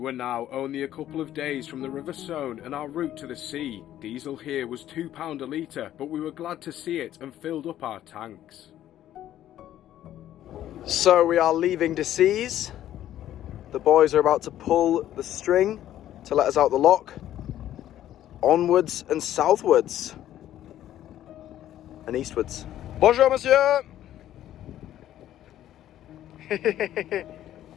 now only a couple of days from the River Saône and our route to the sea. Diesel here was £2 a litre, but we were glad to see it and filled up our tanks. So we are leaving Decize. The boys are about to pull the string to let us out the lock. Onwards and southwards. And eastwards. Bonjour, monsieur!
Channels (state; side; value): quieter; right; 12.2 dB